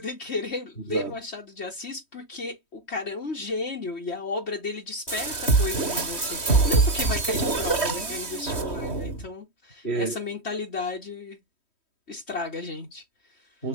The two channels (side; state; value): right; late; 3.1 ms